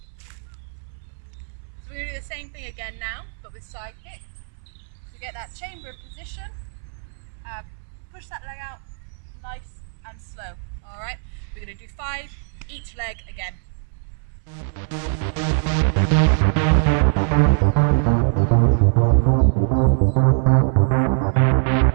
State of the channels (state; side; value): silent; left; 64 dB below the other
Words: Same thing again now, but with side kick. So get that chamber position, push that leg out nice and slow. Alright, we're going to do 5 each leg again.